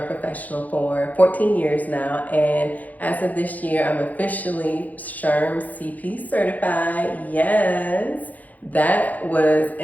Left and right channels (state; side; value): late; right; 0.079 ms